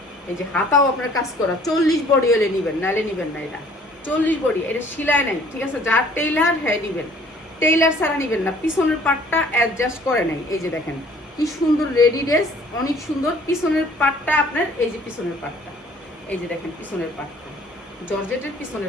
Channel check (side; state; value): both; normal; correlation 0.56